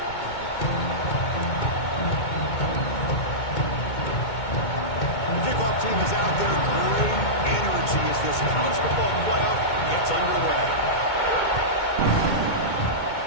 The kickoff team is out there. Great energy as this college football playoff gets underway.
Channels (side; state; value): right; late; 2.2 ms